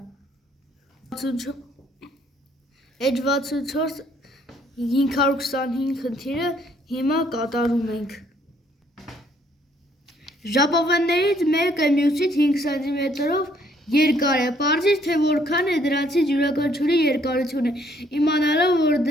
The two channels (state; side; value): normal; both; correlation 0.65